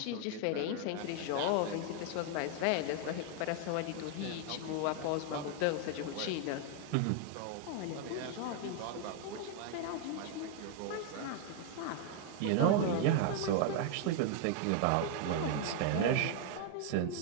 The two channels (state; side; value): different; both; correlation 0.01